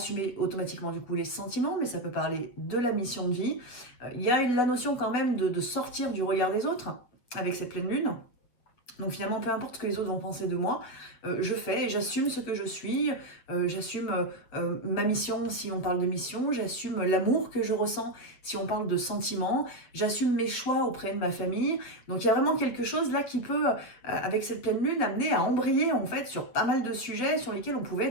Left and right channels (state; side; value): late; right; 8.3 ms